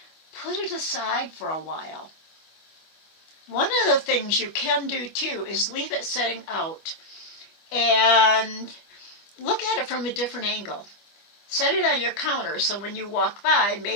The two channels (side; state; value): right; late; 25 ms